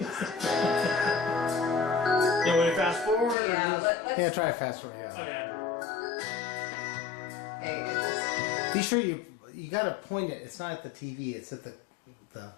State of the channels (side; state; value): right; drops out; at 3.4 s